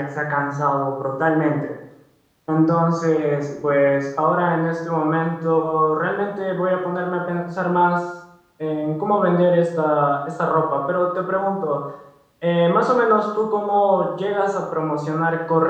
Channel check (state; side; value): identical; both; correlation 1.00